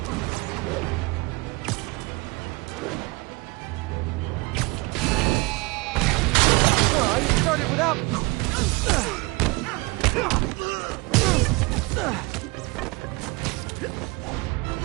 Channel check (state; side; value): quieter; left; 25.7 dB